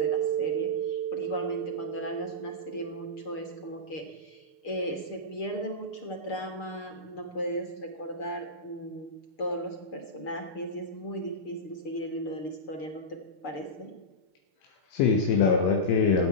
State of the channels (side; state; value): right; late; 6.7 ms